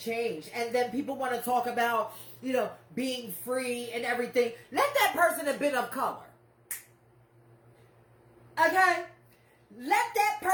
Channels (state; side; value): identical; both; correlation 1.00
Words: And then people want to talk about, being free and everything. Let that person have been of color. Okay? Let that